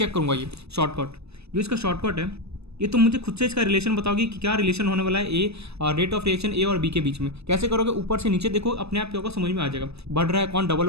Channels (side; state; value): left; late; 0.79 ms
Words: करूँगा ये शॉर्टकट। जो इसका शॉर्टकट है ये तुम मुझे खुद से इसका रिलेशन बताओगे कि क्या रिलेशन होने वाला है ए रेट ऑफ रिएक्शन ए और बी के बीच में। कैसे करोगे, ऊपर से नीचे देखो, अपने आप क्या होगा समझ में आ जाएगा। बढ़ रहा है कौन, डबल